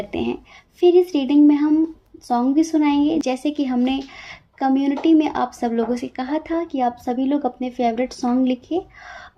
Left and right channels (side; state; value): both; identical; correlation 1.00